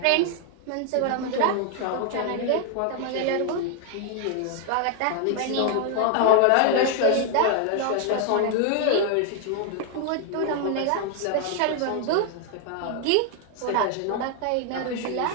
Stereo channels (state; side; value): different; both; correlation 0.00